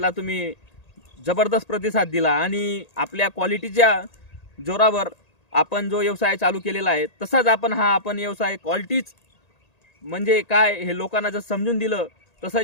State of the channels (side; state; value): right; late; 1.8 ms